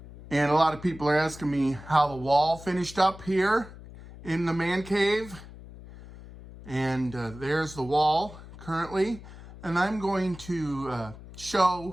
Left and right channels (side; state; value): left; noise; hum, 16 dB below the sound